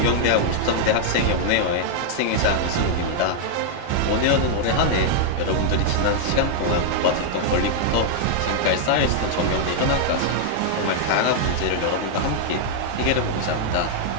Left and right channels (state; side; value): different; both; correlation 0.00